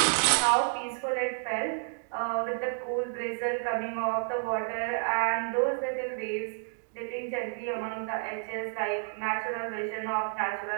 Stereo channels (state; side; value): silent; left; 58 dB below the other